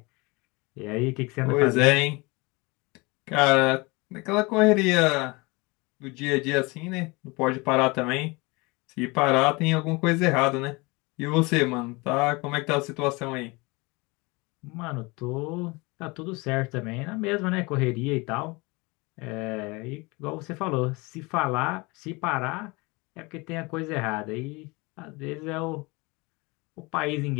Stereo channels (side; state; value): right; quieter; 25.8 dB